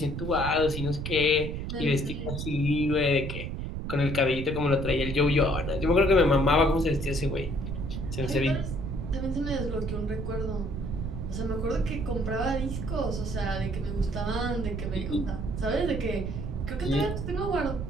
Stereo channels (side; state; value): right; noise; rumble, 5 dB below the sound